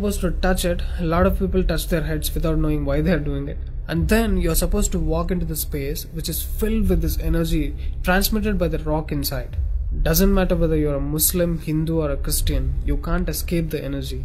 to touch it. A lot of people touch their heads without knowing why they are doing it. And then you are supposed to walk into the space which is filled with this energy transmitted by the rock inside. Doesn't matter whether you are a Muslim, Hindu or a Christian, you can't escape the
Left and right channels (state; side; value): identical; both; correlation 1.00